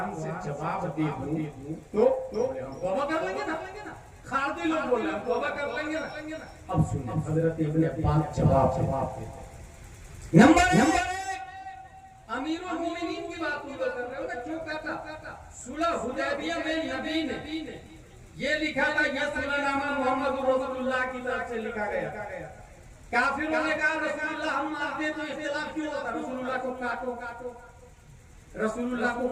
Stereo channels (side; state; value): both; identical; correlation 1.00